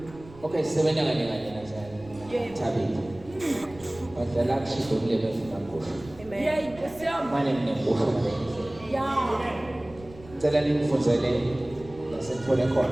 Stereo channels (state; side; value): noise; right; rumble, 20 dB below the sound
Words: okay sebenza kanye nazali. Tabiti. Badala kushido kulebe funakusho. Yey, Nkosi yami. Mane mnekusho mabenzi. Ya. Ngicela ningifundele lasethole